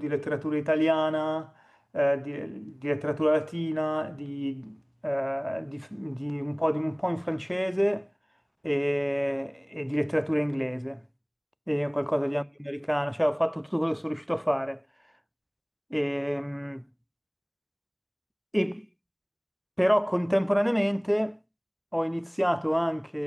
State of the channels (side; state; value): both; identical; correlation 1.00